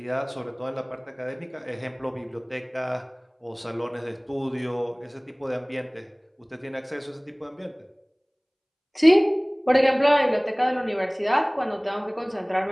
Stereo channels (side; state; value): both; identical; correlation 1.00